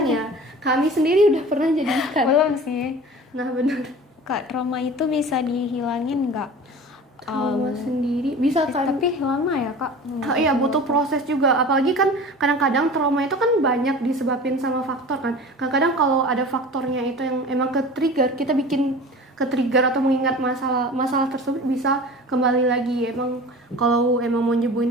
ya. Kami sendiri udah pernah jadi ikan. Belum sih. Nah, benar. Kak, trauma itu bisa dihilangin nggak? Trauma sendiri bisa kan. Tapi lama ya, Kak? Iya, butuh proses juga. Apalagi kan kadang-kadang trauma itu kan banyak disebabin sama faktor kan. Kadang-kadang kalau ada faktornya itu yang emang ke-trigger, kita bikin ke-trigger atau mengingat masalah tersebut bisa kembali lagi. Emang kalau emang mau nyembuhin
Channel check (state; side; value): normal; both; correlation 0.38